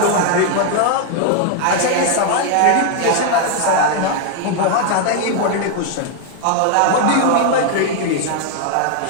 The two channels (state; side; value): different; both; correlation 0.00